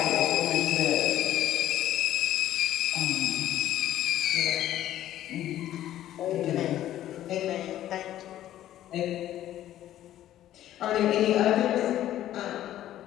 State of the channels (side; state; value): right; quieter; 12.7 dB